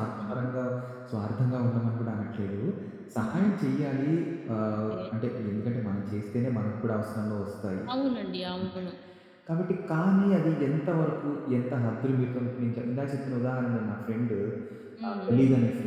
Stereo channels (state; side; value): identical; both; correlation 1.00